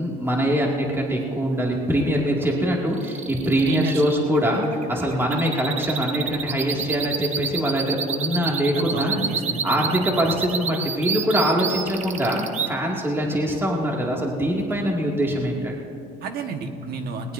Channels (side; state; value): both; normal; correlation 0.57